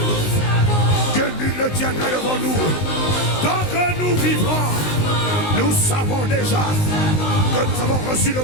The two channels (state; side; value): late; right; 19 ms